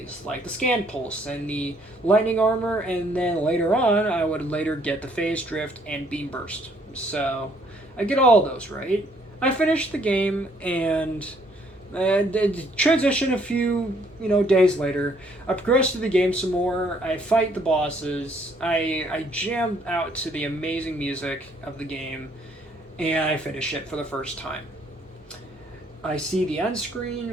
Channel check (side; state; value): both; normal; correlation 0.65